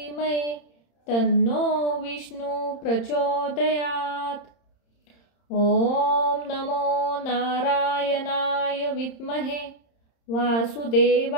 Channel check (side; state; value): right; late; 30 ms